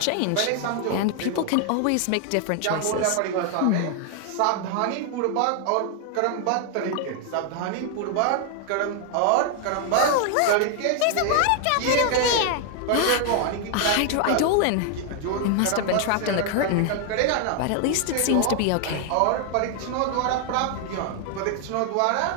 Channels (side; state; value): both; different; correlation 0.00